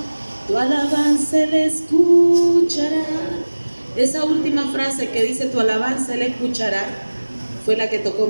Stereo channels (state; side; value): inverted; both; correlation -1.00